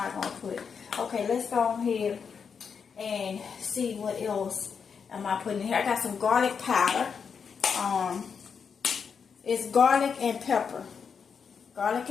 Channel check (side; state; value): right; quieter; 6.3 dB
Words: going to put? Okay, let's go ahead and see what else am I putting in here. I got some garlic powder. is garlic and pepper. Garlic